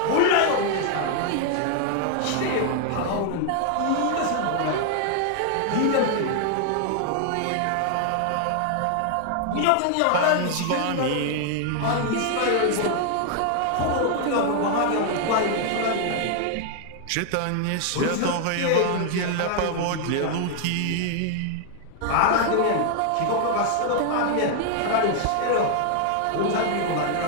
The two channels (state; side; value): different; both; correlation 0.00